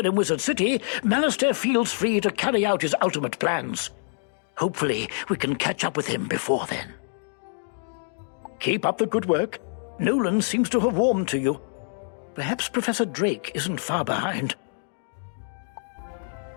Wizard City, Malastare feels free to carry out his ultimate plans. Hopefully, we can catch up with him before then. Keep up the good work. Nolan seems to have warmed to you. Perhaps Professor Drake isn't far behind.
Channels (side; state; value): right; silent; digital silence